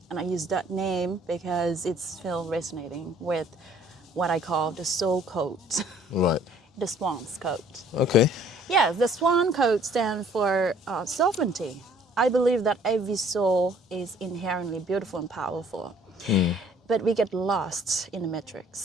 and I use that name because it's still resonating with what I call the soul code, Right. the SWANS Code. Okay. Yes, the SWAN Code stands for sovereignty. I believe that every soul is inherently beautiful and powerful, but we get lost in the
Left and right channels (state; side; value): normal; both; correlation 0.57